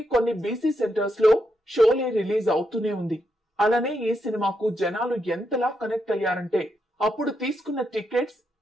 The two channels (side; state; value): both; normal; correlation 0.82